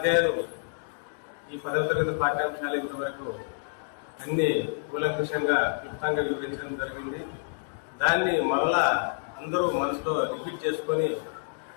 ఈ 10వ తరగతి పాఠ్యాంశాలు ఇంతవరకు అన్ని కూలంకుషంగా క్లుప్తంగా వివరించడం జరిగింది. దాన్ని మరలా అందరూ మనసులో రిపీట్ చేసుకొని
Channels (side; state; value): right; silent; digital silence